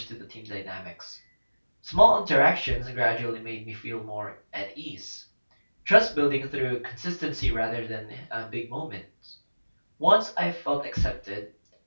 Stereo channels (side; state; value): both; inverted; correlation -1.00